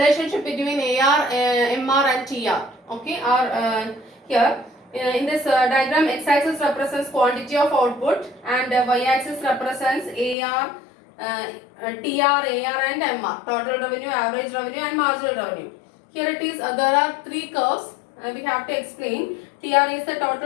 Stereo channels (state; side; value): drops out; right; at 10.4 s